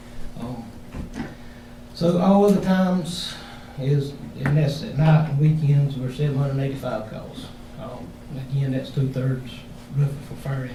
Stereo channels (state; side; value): identical; both; correlation 1.00